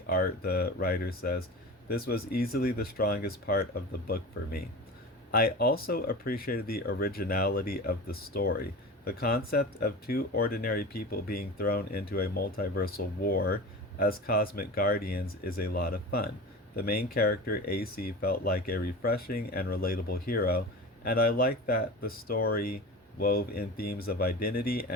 art, the writer says, this was easily the strongest part of the book for me. I also appreciated the originality of the story. The concept of two ordinary people being thrown into a multiversal war as cosmic guardians is a lot of fun. The main character, AC, felt like a refreshing and relatable hero, and I like that the story wove in themes of identity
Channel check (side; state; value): both; normal; correlation 0.31